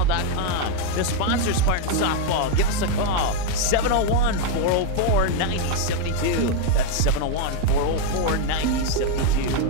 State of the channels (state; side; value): different; both; correlation 0.01